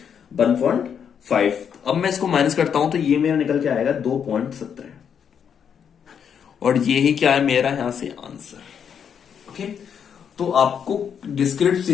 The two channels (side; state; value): right; quieter; 7.7 dB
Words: 1.5। अब मैं इसको माइनस करता हूं तो ये मेरा निकल के आएगा 2.17, और ये ही क्या है मेरा यहां से आंसर। ओके, तो आपको डिस्क्रीट